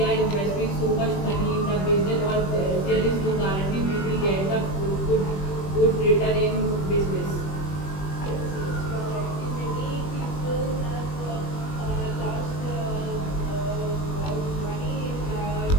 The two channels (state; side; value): late; right; 21 ms